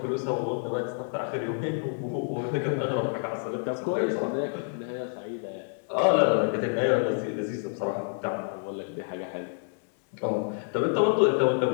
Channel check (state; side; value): silent; right; 59 dB below the other